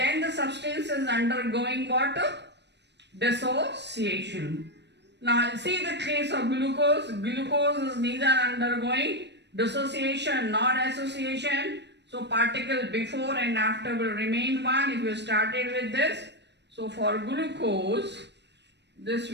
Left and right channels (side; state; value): left; late; 0.50 ms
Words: the substance is undergoing what? Dissociation. Now see the case of glucose. Glucose is neither undergoing dissociation nor association. So particle before and after will remain 1 if you started with this. So for glucose, this